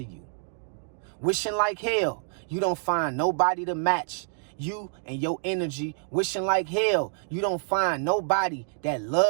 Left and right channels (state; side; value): silent; left; digital silence